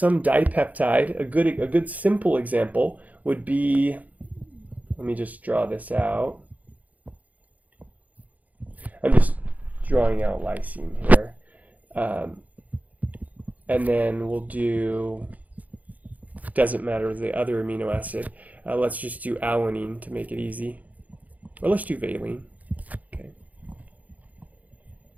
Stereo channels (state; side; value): late; left; 0.076 ms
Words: dipeptide. A good simple example would be, let me just draw this out. I'm just drawing out lysine here. And then we'll do, doesn't matter the other amino acid. Let's just do alanine to make it easy. Or let's do valine. Okay.